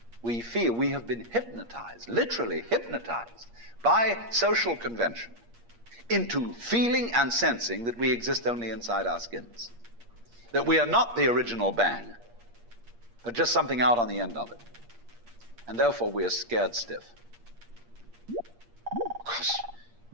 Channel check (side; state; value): left; late; 8.5 ms